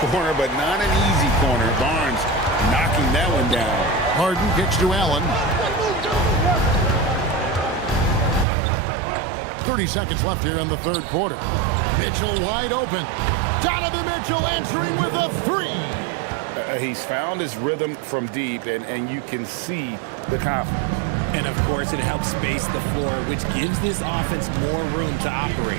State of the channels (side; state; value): left; drops out; at 8.5 s